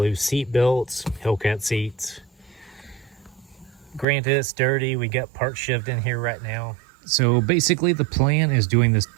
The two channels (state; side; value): drops out; left; at 4.0 s